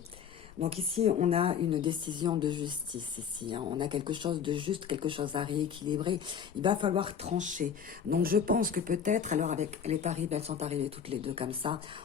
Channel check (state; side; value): quieter; right; 7.4 dB